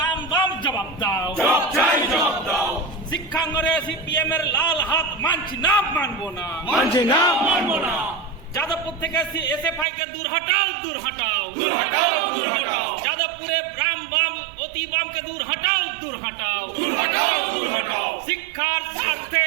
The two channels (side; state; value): left; drops out; at 9.9 s